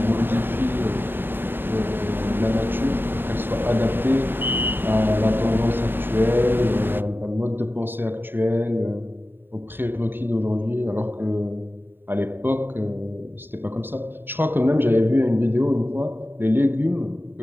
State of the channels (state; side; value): late; left; 0.098 ms